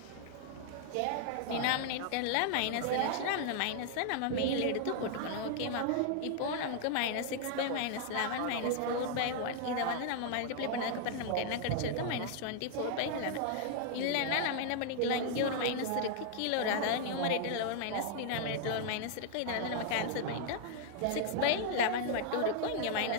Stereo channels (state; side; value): different; both; correlation -0.01